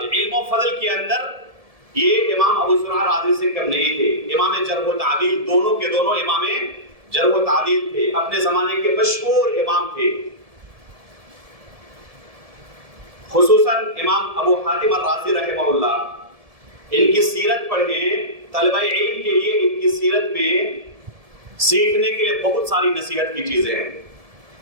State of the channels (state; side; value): late; left; 1.7 ms